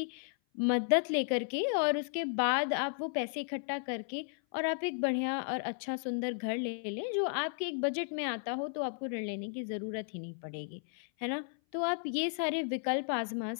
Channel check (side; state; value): right; silent; 55 dB below the other